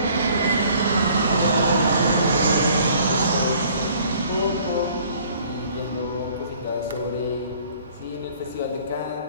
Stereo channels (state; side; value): inverted; both; correlation -0.56